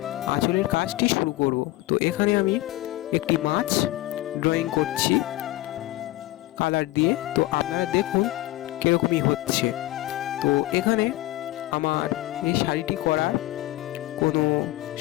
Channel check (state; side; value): quieter; right; 17.5 dB